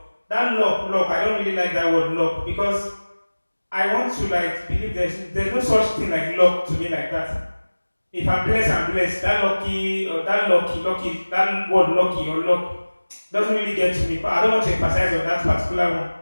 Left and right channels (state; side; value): inverted; both; correlation -1.00